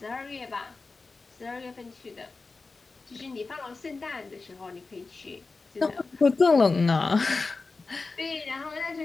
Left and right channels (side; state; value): right; quieter; 3.9 dB